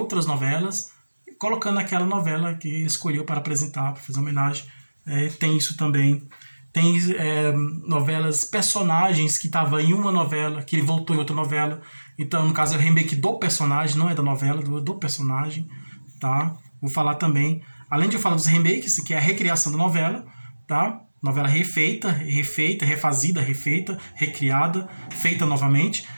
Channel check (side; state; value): both; inverted; correlation -1.00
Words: novelas, colocando aquela novela que ele escolheu para apresentar, para fazer homenagem. Tem isso também. Tem novelas, personagens que estavam em uma novela, que ele voltou em outra novela. Então, no caso, é o remake do personagem, não é da novela, do personagem. Tá? Vou falar também, além de eu falar dos remakes, que é a recriação da novela, tá? Novela refeita, refazida, refeita, recriada, feita novamente.